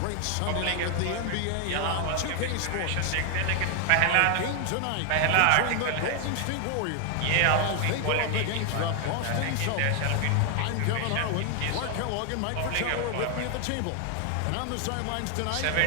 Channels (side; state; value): both; different; correlation 0.00